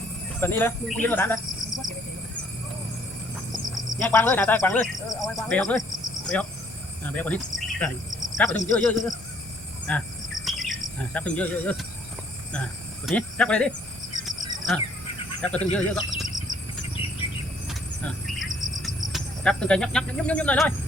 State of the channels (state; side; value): normal; both; correlation 0.63